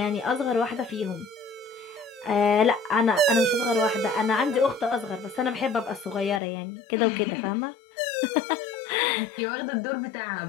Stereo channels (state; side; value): drops out; right; at 6.4 s